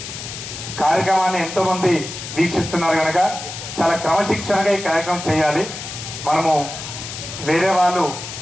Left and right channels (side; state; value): left; noise; hiss, 9 dB below the sound